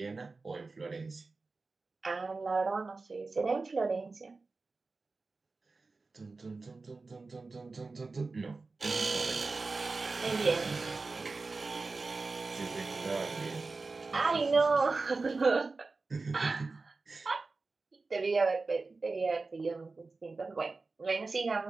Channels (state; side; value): quieter; left; 3.8 dB